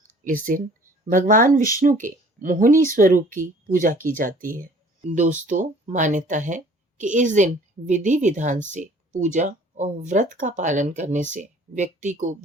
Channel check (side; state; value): both; normal; correlation 0.52